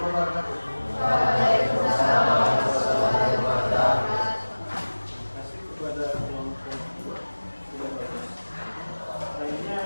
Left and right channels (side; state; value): both; inverted; correlation -1.00